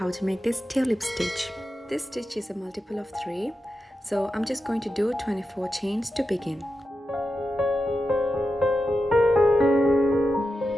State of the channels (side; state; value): both; normal; correlation 0.89